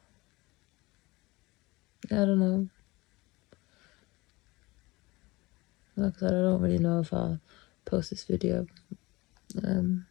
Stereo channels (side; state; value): right; quieter; 22.5 dB